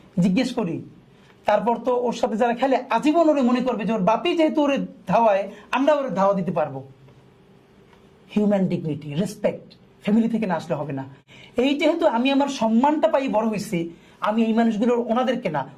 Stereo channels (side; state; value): both; identical; correlation 1.00